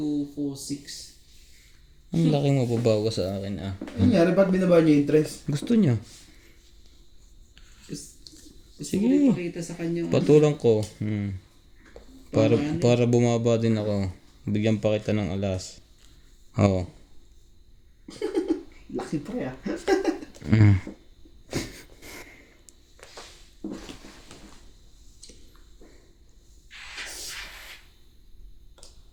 4, 6. Ang laki mo babawa sa akin ah. Ano nangyari? Ba't binaba niya yung interest? Gusto niya. Gusto ko Sige. ipakita sa kanya. Patulang ko. Para bumaba din ako. Bigyan pa kita ng alas. Oo. Laki pre ah.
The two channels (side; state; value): both; identical; correlation 1.00